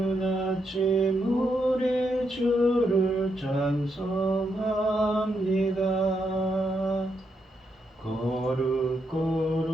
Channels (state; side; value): normal; both; correlation 0.80